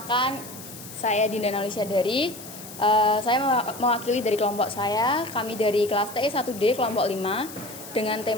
saya Dinda Nalisyadari. Saya mewakili dari kelompok saya. Kami dari kelas TE 1D kelompok 5 dengan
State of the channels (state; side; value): noise; left; hiss, 14 dB below the sound